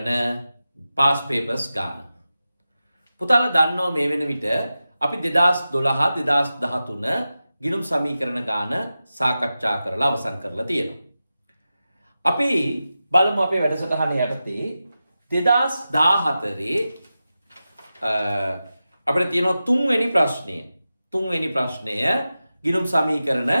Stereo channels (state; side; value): inverted; both; correlation -0.93